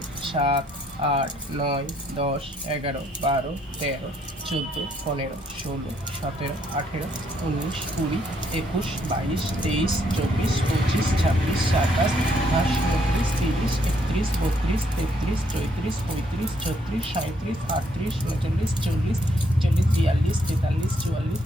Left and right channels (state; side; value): normal; both; correlation 0.70